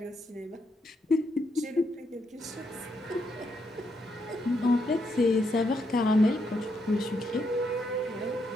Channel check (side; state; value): both; normal; correlation 0.78